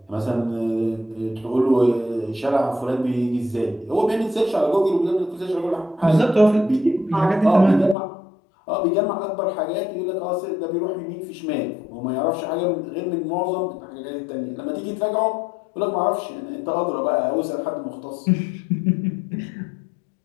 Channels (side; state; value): right; drops out; at 8.0 s